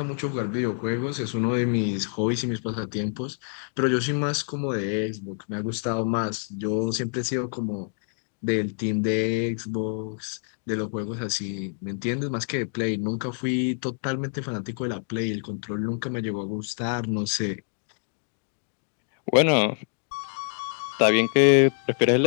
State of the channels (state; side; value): silent; right; digital silence